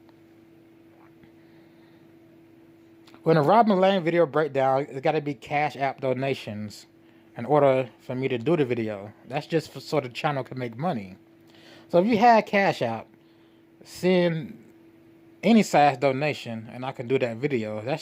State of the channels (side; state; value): both; identical; correlation 1.00